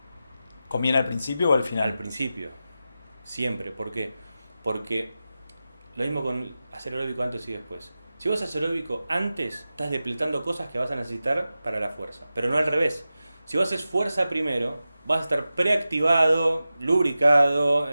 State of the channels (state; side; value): inverted; both; correlation -0.93